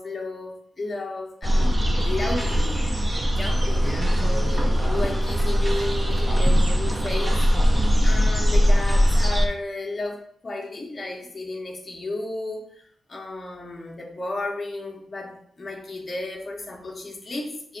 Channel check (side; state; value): both; normal; correlation 0.96